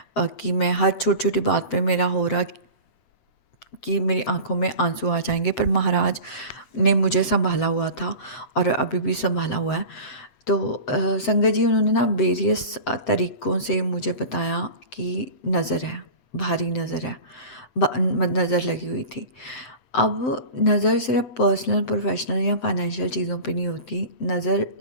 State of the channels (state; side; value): late; right; 7.7 ms